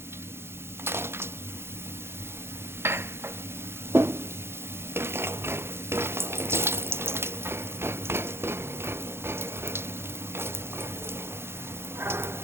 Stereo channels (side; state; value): left; late; 0.12 ms